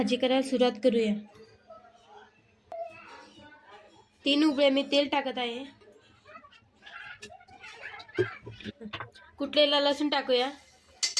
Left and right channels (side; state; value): both; identical; correlation 1.00